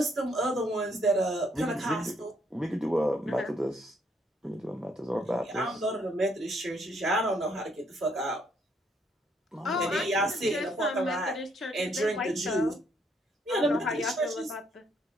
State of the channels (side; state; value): both; normal; correlation 0.70